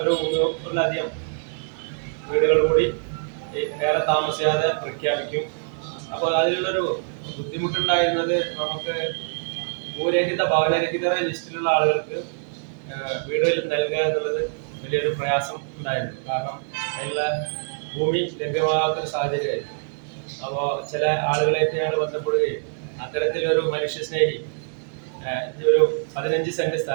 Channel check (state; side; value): silent; left; digital silence